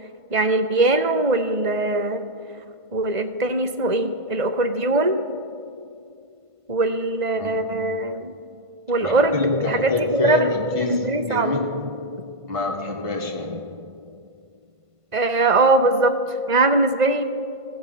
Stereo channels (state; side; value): late; left; 1.5 ms